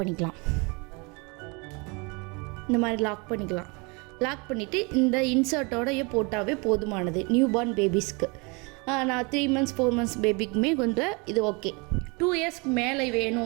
இந்த மாதிரி லாக் பண்ணிவிட்டு இந்த இன்சர்ட்டோடையே போட்டாவே போதுமானது நியூபார்ன் பேபிஸ்க்கு. நான் 3 months 4 months பேபிக்குமே கொஞ்சம் இது ஓகே. 2 yearsக்கு மேலே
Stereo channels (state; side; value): quieter; left; 29.6 dB